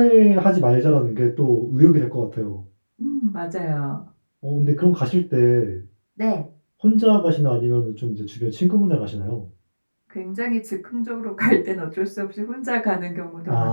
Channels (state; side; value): inverted; both; correlation -1.00